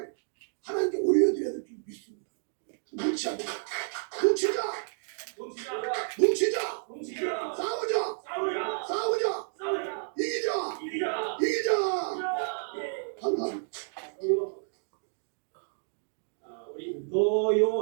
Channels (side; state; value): left; silent; digital silence